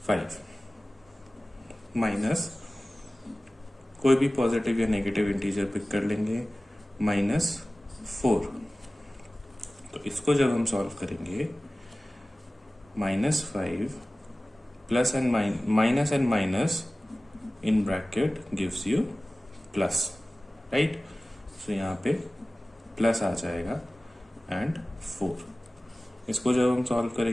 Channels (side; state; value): both; normal; correlation 0.97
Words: माइनस कोई भी पॉजिटिव या नेगेटिव इंटीजर पिक कर लेंगे -4. तो इसको जब हम सॉल्व करेंगे -5 plus and minus and minus in bracket gives you plus. Right, so यहाँ पे प्लस आ जाएगा एंड 4. इसको जब हम सॉल्व